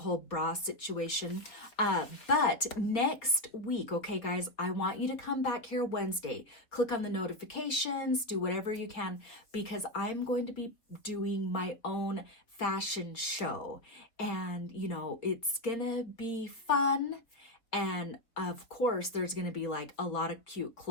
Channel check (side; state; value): right; late; 4.0 ms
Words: bra situation. But next week, okay guys, I want you to come back here Wednesday. Click on the notifications, do whatever you can, because I'm going to be doing my own fashion show. And you know, it's gonna be fun. And of course, there's going to be like a lot of cute